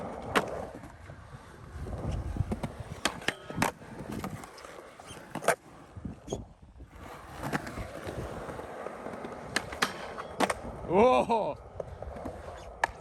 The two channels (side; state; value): both; identical; correlation 1.00